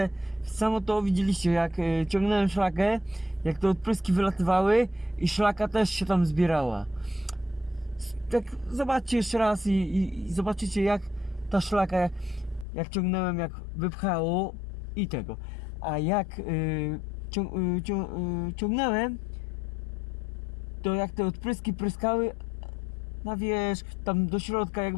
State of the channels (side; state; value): right; drops out; at 12.7 s